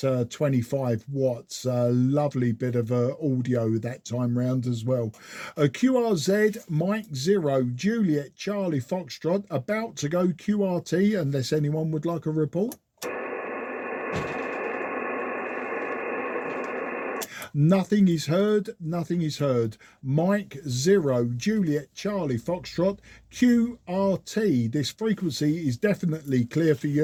25 watts. Lovely bit of audio that time round as well. QRZ, Mike 0, Juliet Charlie Foxtrot, about to go QRT, unless anyone would like a report. Nothing is heard, nothing is heard. Mike 0, Juliet Charlie Foxtrot, QRT. This frequency is definitely clear for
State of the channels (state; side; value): identical; both; correlation 1.00